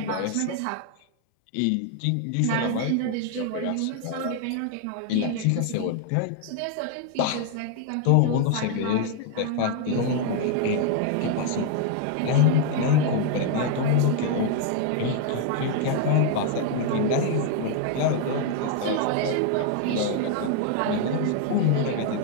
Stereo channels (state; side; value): different; both; correlation 0.00